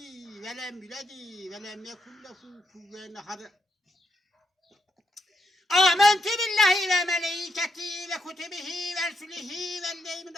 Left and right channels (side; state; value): both; normal; correlation 0.80